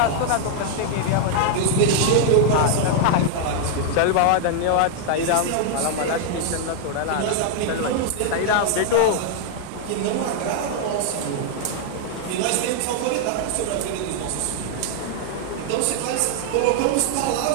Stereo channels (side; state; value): both; different; correlation -0.01